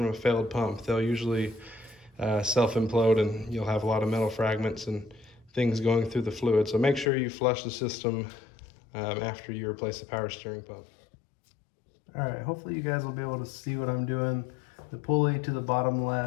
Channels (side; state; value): right; drops out; at 7.1 s